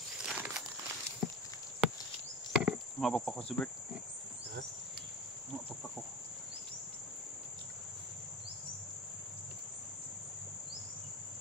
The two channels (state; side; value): noise; right; rumble, 26 dB below the sound